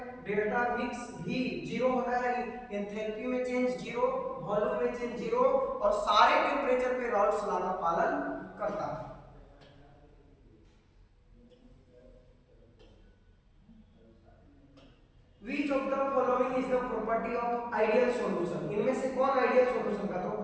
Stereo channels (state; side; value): identical; both; correlation 1.00